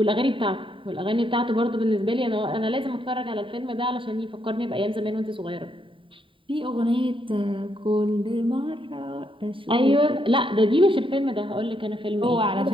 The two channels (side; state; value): left; late; 0.25 ms